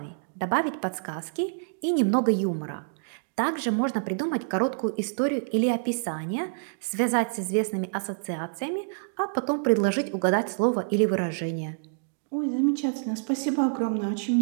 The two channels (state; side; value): silent; left; digital silence